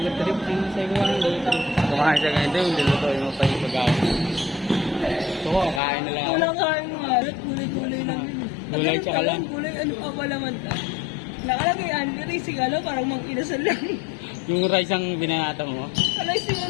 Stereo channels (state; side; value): drops out; right; at 5.8 s